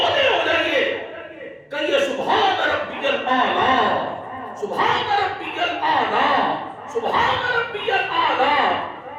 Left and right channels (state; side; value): identical; both; correlation 1.00